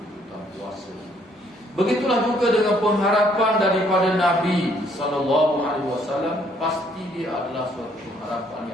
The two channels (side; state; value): both; normal; correlation 0.66